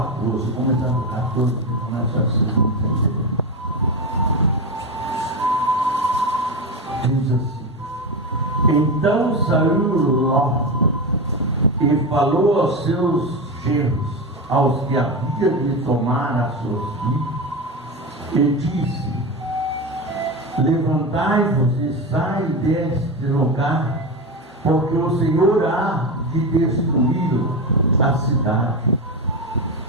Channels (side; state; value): both; normal; correlation 0.18